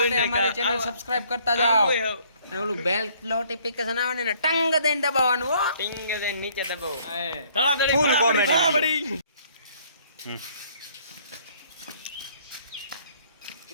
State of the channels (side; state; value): both; inverted; correlation -0.61